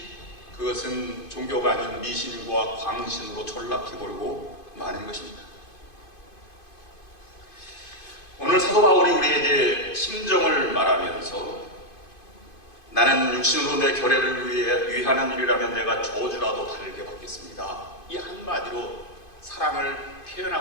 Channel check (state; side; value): late; right; 2.5 ms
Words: 그것은 종교가 아닌 미신과 광신으로 전락해버리고 마는 것입니다. 오늘 사도 바울이 우리에게 심정을 말하면서 나는 육신으로 내 결례를 위하는 일이라면 내가 저주라도 달게 받겠습니다, 이 한마디로 사랑을